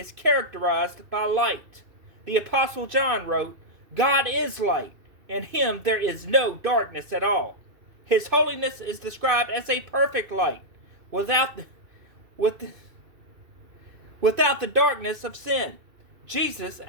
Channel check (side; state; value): left; late; 2.5 ms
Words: characterized by light. The Apostle John wrote, "God is light. In him there is no darkness at all." His holiness is described as a perfect light, without the darkness of sin. Jesus,